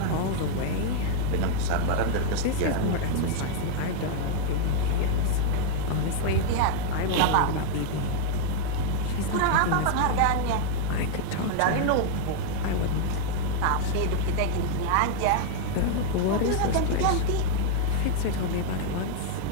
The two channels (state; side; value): different; both; correlation 0.00